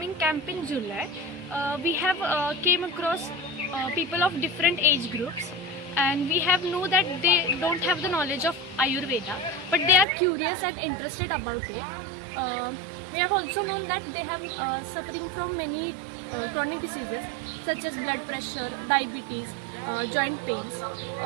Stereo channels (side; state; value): left; drops out; at 10.1 s